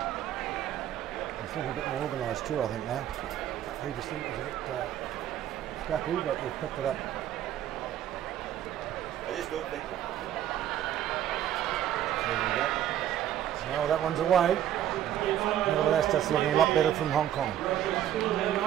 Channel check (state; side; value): quieter; left; 11.4 dB